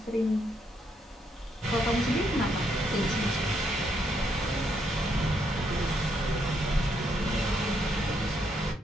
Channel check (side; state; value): both; normal; correlation 0.75